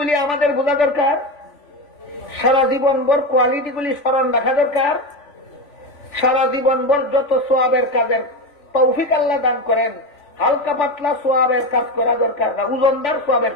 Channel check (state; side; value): late; right; 3.4 ms